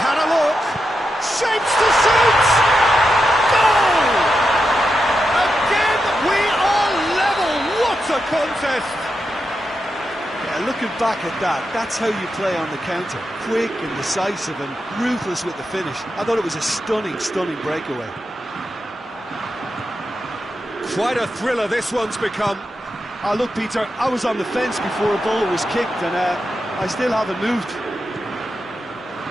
had a look. Shapes to shoot! Goal! Again, we are level. What a contest! Yeah, looking back at that, that's how you play on the counter. Quick and decisive and ruthless with the finish. I thought it was a stunning, stunning breakaway. Quite a thriller this one's become. Oh, look, Peter, I was on the fence before a ball was kicked, and I still haven't moved.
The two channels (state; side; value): normal; both; correlation 0.87